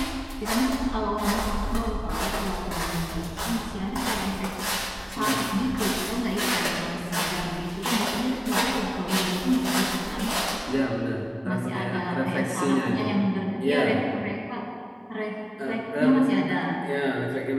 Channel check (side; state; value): both; identical; correlation 1.00